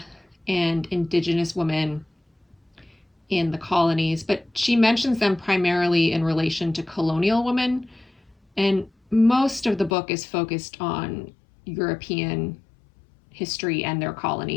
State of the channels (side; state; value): right; drops out; at 9.9 s